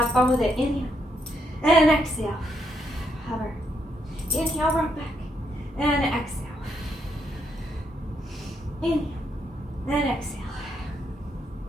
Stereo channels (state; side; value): normal; both; correlation 0.77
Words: fun with it. Inhale and exhale. Hover. Inhale, rock back. And exhale. Inhale and exhale.